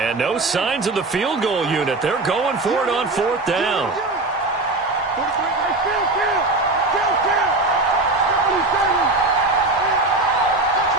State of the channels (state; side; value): quieter; left; 3.1 dB